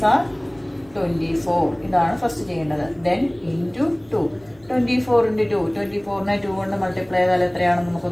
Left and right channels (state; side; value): noise; left; rumble, 30 dB below the sound